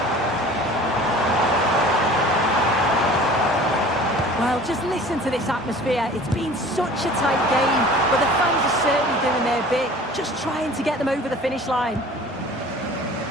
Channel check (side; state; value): both; normal; correlation 0.45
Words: Well, just listen to this atmosphere. It's been such a tight game, but the fans are certainly doing their bit, just trying to get them over the finish line.